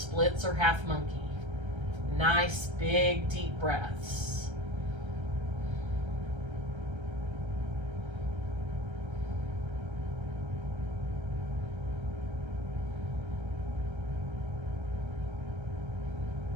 or half monkey. Nice big deep breaths.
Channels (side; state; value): left; late; 1.3 ms